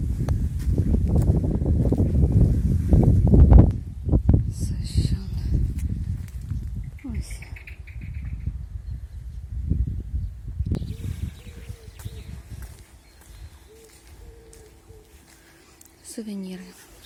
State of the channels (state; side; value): identical; both; correlation 1.00